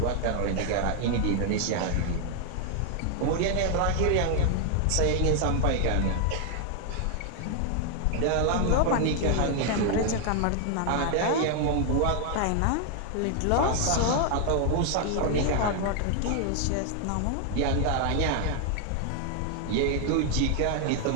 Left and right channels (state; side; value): different; both; correlation 0.00